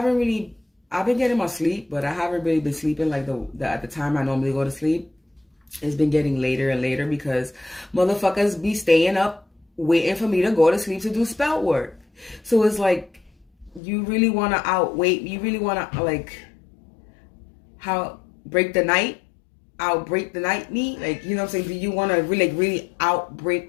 been getting my sleep, but I haven't really been sleeping like at the time I normally go to sleep. It's been getting later and later because motherfuckers be staying up waiting for me to go to sleep to do spell work. So it's like, you really want to outwait, you really want to like outbreak the night me, like, you know what I'm saying? Do you want to really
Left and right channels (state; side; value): drops out; right; at 13.8 s